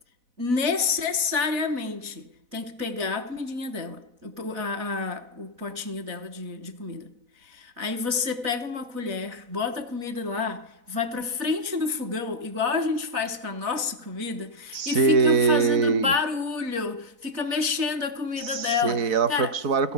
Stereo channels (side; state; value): left; late; 4.0 ms